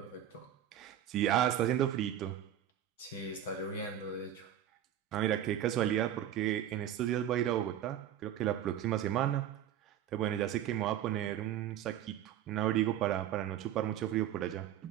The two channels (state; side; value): quieter; left; 10.9 dB